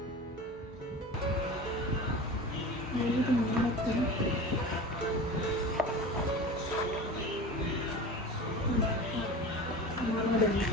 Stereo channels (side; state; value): both; normal; correlation 0.34